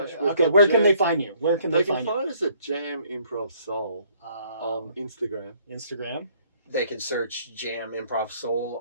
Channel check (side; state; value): both; inverted; correlation -0.62